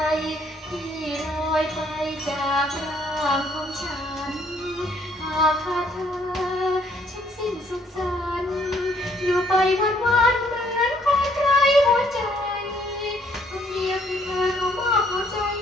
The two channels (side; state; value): both; normal; correlation 0.65